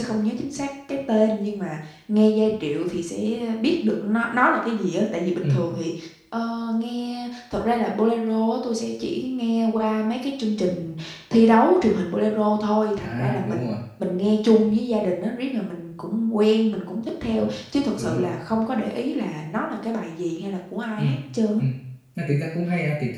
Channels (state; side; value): identical; both; correlation 1.00